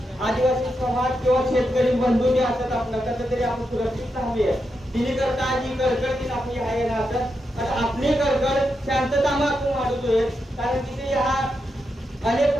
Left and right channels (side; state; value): both; normal; correlation 0.85